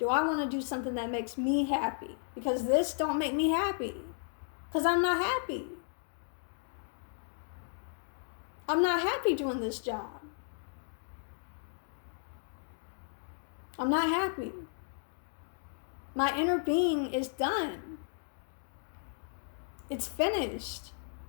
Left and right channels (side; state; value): right; silent; digital silence